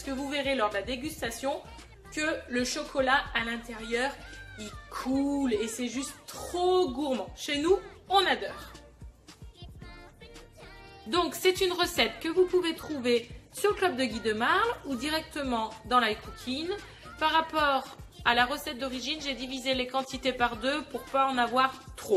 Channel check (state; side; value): identical; both; correlation 1.00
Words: que vous verrez lors de la dégustation que le chocolat à l'intérieur, il coule et c'est juste trop gourmand. Chez nous, on adore. Donc, c'est une recette que vous pouvez trouver sur le Club de Guy de Marle ou directement dans l'iCooking. Par rapport à la recette d'origine, j'ai divisé les quantités par deux pour pas en avoir